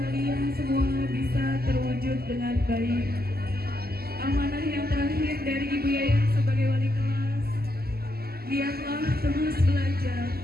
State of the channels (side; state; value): left; late; 0.45 ms